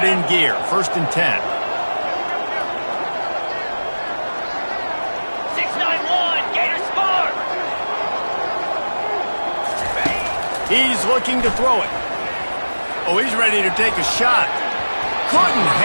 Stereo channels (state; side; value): inverted; both; correlation -1.00